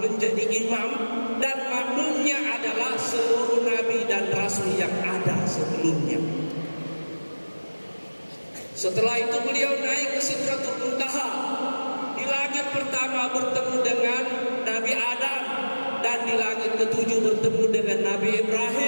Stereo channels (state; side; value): inverted; both; correlation -1.00